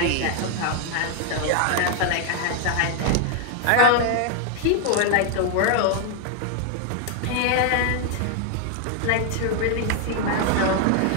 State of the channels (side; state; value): both; different; correlation 0.00